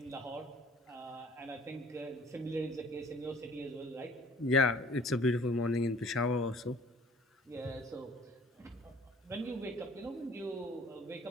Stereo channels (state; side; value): normal; both; correlation 0.52